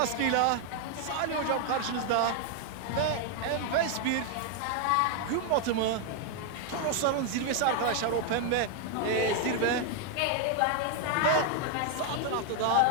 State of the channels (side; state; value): both; different; correlation 0.00